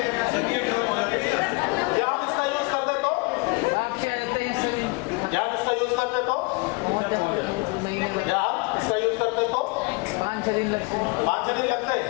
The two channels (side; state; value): right; quieter; 28.1 dB